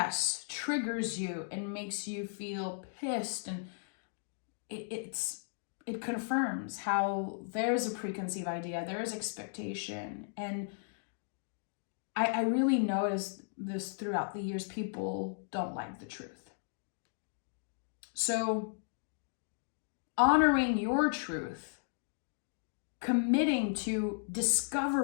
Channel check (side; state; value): right; silent; digital silence